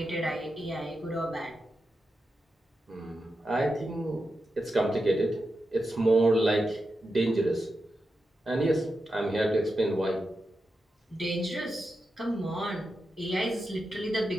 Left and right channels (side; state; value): both; normal; correlation 0.89